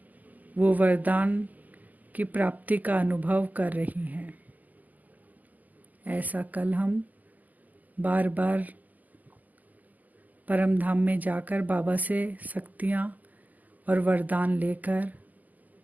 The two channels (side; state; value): left; late; 0.081 ms